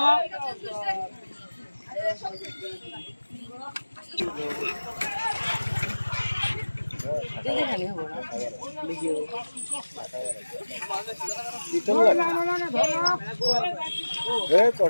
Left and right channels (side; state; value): both; inverted; correlation -1.00